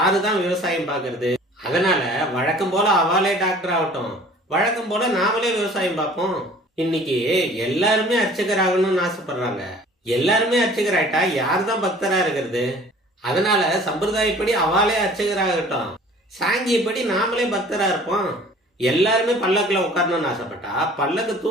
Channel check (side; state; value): both; normal; correlation 0.49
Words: தான் விவசாயம் பார்க்கறது? அதனால வழக்கம் போல அவாலே டாக்டர் ஆகட்டும், வழக்கம் போல நாமளே விவசாயம் பார்ப்போம். இன்னைக்கு எல்லாருமே அர்ச்சகர் ஆகணும்னு ஆசைப்படுறாங்க. எல்லாருமே அர்ச்சகர் ஆயிட்டா யாரு தான் பக்தரா இருக்கிறது? அதனால சம்பிரதாயப்படி அவாலே அர்ச்சகராகட்டும், சாங்கியப்படி நாமளே பக்தரா இருப்போம். எல்லாருமே பல்லக்குல உட்காரணும்னு ஆசைப்பட்டா பல்லக்கு